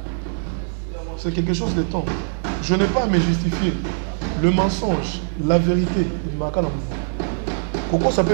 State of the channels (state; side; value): silent; left; digital silence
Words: C'est quelque chose de temps. Je n'ai pas à me justifier. Le mensonge, la vérité, il m'a qu'à la mono. Koko